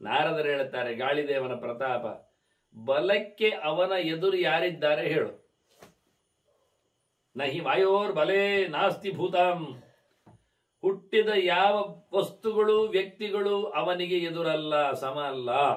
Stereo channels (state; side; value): identical; both; correlation 1.00